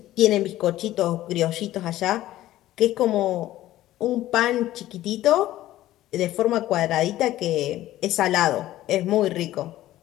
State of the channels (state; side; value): quieter; right; 14.7 dB